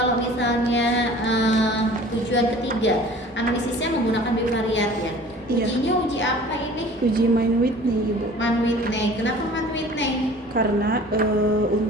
misalnya tujuan ketiga, analisisnya menggunakan bivariat ya. Ujinya uji apa ini? Uji Mann-Whitney, Ibu. Mann-Whitney. Kenapa Mann-Whitney? Karena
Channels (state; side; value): normal; both; correlation 0.47